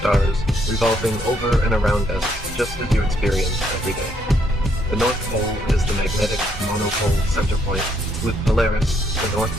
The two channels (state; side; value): normal; both; correlation 0.72